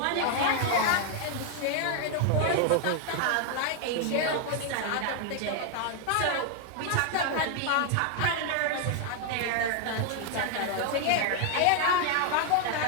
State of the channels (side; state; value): both; different; correlation 0.00